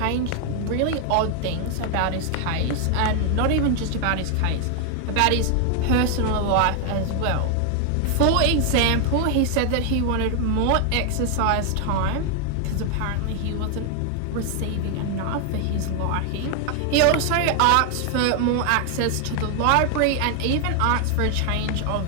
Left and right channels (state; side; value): different; both; correlation 0.00